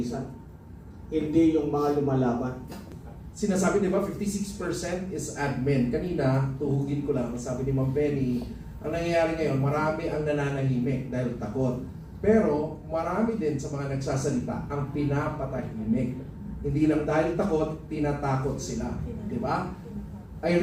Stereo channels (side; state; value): both; identical; correlation 1.00